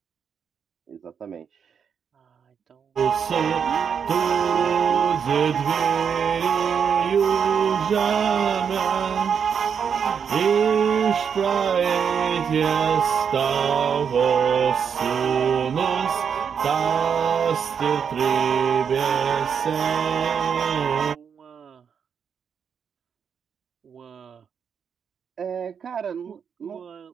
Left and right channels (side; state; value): left; quieter; 7.1 dB